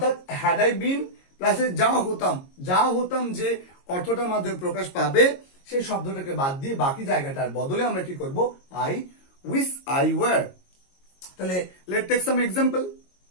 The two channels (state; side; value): late; right; 22 ms